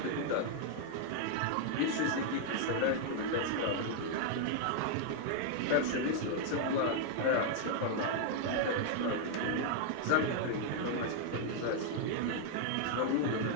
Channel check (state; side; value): different; both; correlation 0.00